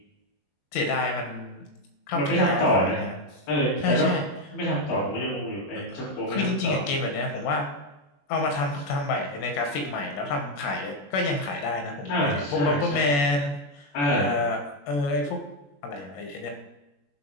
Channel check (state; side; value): late; right; 21 ms